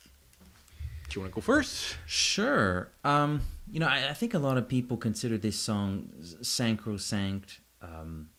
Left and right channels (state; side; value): identical; both; correlation 1.00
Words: Do you want to go first? Sure. You know, I think a lot of people consider this song sacrosanct.